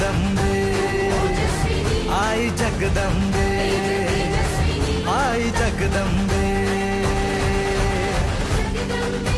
आई जगदंबे, आई जगदंबे।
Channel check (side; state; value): both; identical; correlation 1.00